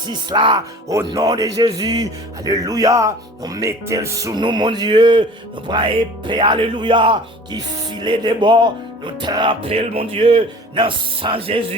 là, au nom de Jésus, alléluia, nous mettez sous nous mon Dieu, nous prenons épée, alléluia, qui filait des bords, nous trempons, mon Dieu, dans le sang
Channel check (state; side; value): normal; both; correlation 0.44